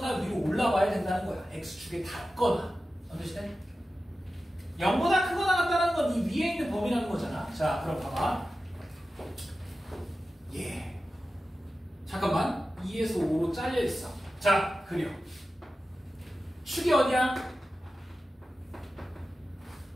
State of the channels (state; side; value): normal; both; correlation 0.93